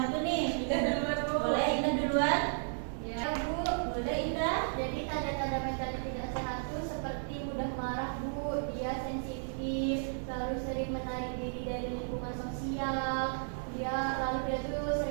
nih? Indah duluan, Bu. Boleh Indah duluan? Ya Bu. Boleh Indah? Jadi tanda-tanda mental tidak sehat itu seperti mudah marah Bu, dia sensitif, lalu sering menarik diri dari lingkungan sosial, dia tuh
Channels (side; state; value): left; silent; digital silence